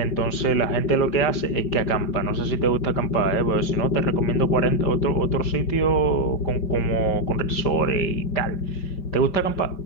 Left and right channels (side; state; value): right; late; 5.0 ms